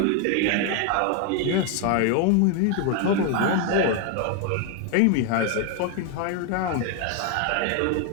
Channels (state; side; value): different; both; correlation 0.01